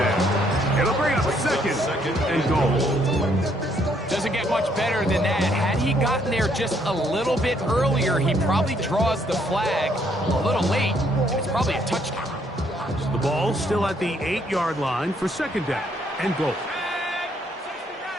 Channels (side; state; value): both; normal; correlation 0.69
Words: It'll bring up second and goal. Doesn't get much better than that. Had he gotten there just a little bit earlier, he probably draws the flag a little late, and it's probably a touchdown. So the ball still at the 8-yard line for second down and goal.